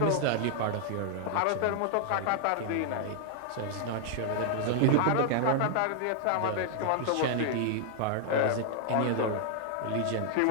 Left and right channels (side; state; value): both; different; correlation 0.00